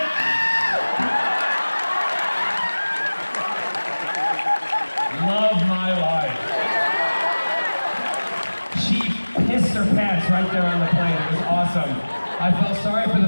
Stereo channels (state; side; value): inverted; both; correlation -1.00